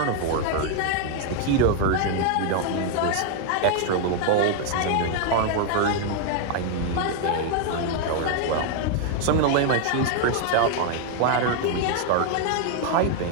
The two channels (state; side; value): different; both; correlation 0.00